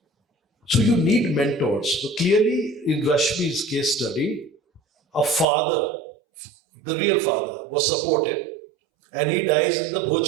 So you need mentors. So clearly in Rashmi's case study, a father, the real father, was supported, and he dies in the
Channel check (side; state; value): left; drops out; at 5.5 s